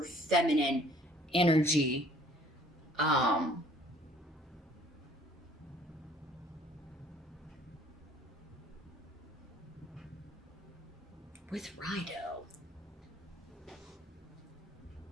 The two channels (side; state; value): both; normal; correlation 0.57